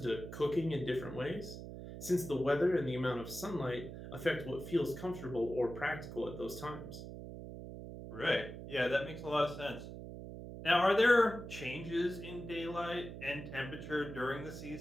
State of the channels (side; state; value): right; noise; hum, 10 dB below the sound